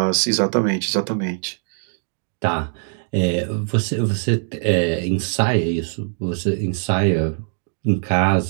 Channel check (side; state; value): left; silent; digital silence